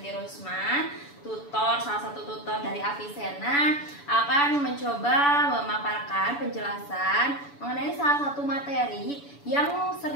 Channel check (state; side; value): late; right; 7.0 ms